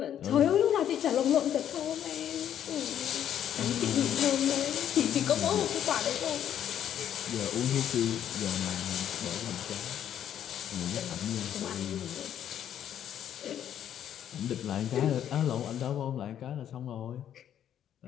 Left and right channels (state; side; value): quieter; right; 10.1 dB